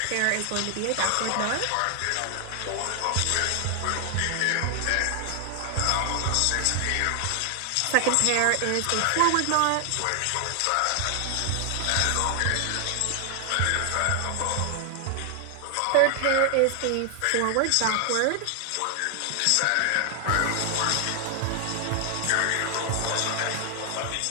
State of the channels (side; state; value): both; different; correlation 0.00